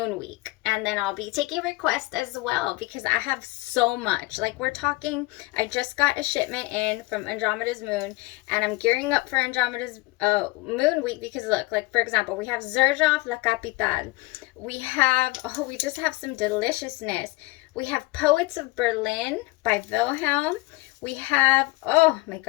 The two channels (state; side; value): quieter; right; 21.9 dB